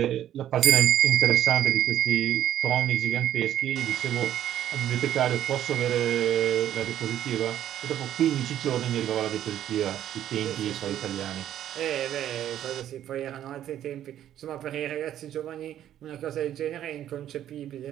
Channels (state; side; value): quieter; left; 11.3 dB